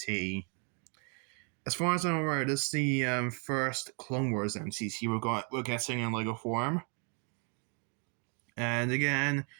As far as I'm aware, this is the first Clone Wars MTT we're getting in Lego form. And again, a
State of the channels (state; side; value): quieter; left; 38.0 dB